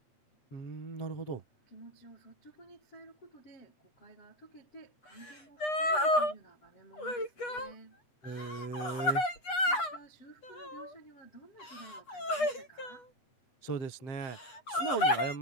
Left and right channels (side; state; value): right; late; 8.2 ms